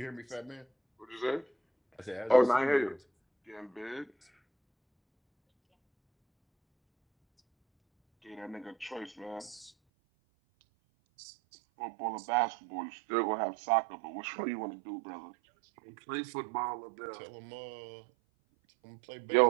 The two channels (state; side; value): drops out; left; at 9.7 s